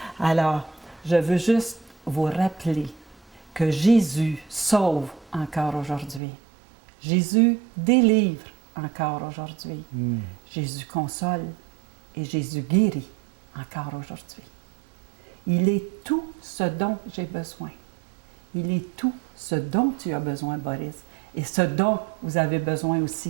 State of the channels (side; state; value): left; drops out; at 6.2 s